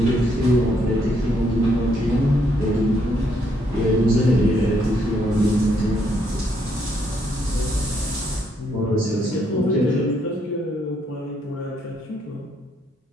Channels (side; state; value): both; normal; correlation 0.73